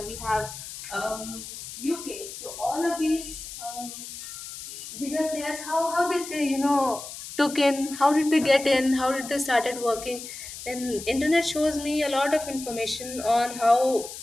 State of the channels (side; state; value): left; noise; hiss, 11 dB below the sound